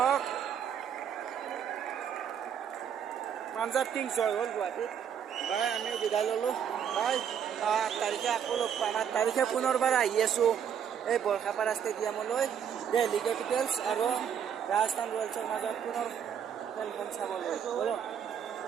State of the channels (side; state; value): left; quieter; 8.3 dB